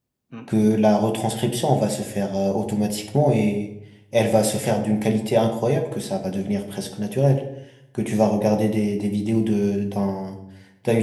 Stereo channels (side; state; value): both; identical; correlation 1.00